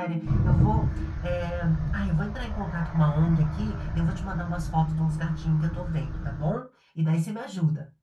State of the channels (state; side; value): identical; both; correlation 1.00